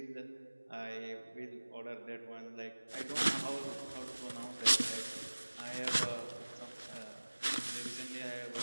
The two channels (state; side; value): inverted; both; correlation -1.00